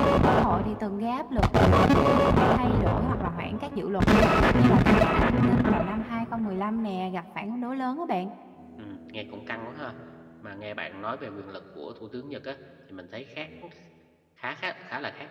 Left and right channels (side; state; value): both; identical; correlation 1.00